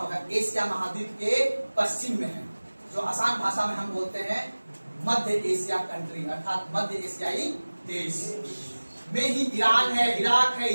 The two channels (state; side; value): inverted; both; correlation -1.00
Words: एशिया महाद्वीप के पश्चिम में है, जो आसान भाषा में हम बोलते हैं मध्य एशिया कंट्री, अर्थात मध्य एशियाई देश। में ही ईरान है, इराक है,